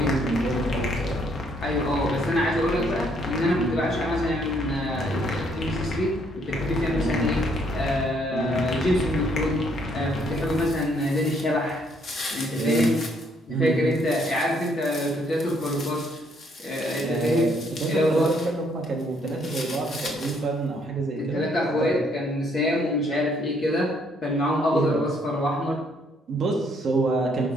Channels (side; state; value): both; normal; correlation 0.68